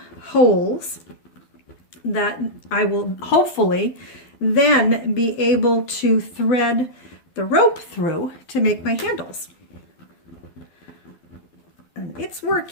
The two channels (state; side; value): late; right; 12 ms